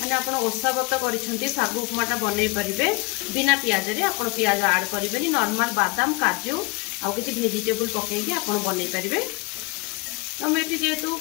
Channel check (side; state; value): right; quieter; 25.6 dB